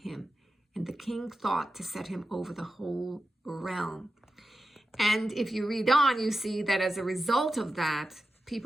and the king thought to set him over the whole realm." And if you read on, you see that as a result of that,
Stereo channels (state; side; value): normal; both; correlation 0.92